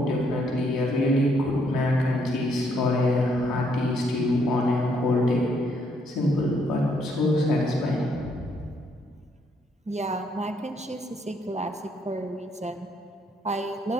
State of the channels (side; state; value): both; normal; correlation 0.71